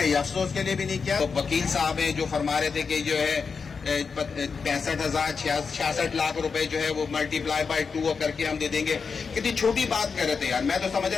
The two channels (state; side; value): quieter; right; 5.4 dB